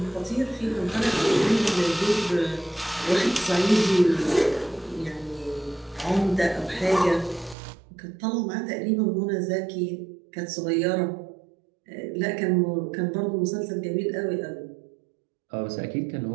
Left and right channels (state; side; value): drops out; left; at 7.6 s